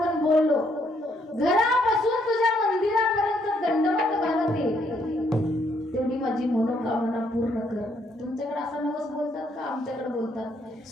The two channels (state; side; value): normal; both; correlation 0.71